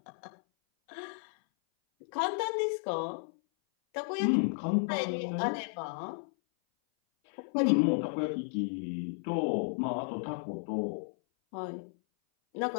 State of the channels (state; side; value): silent; right; 56 dB below the other